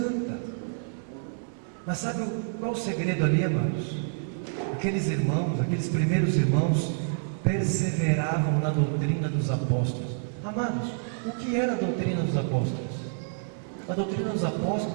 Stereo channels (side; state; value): left; silent; 59 dB below the other